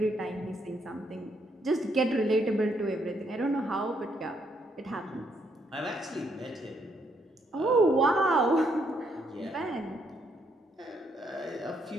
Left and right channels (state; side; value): normal; both; correlation 0.73